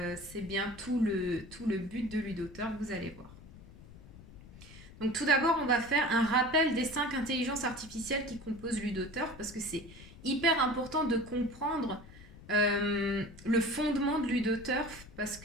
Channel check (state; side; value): noise; left; rumble, 19 dB below the sound